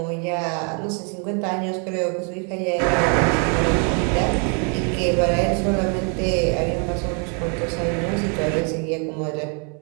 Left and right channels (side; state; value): left; quieter; 38.5 dB